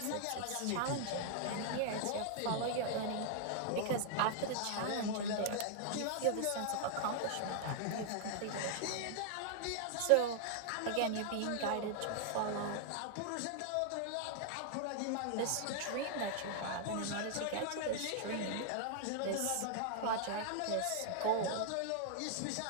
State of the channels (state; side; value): different; both; correlation 0.00